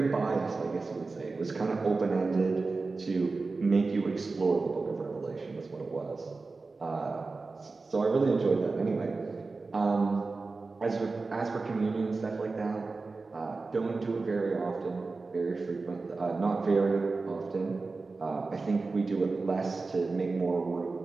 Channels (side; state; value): left; quieter; 3.9 dB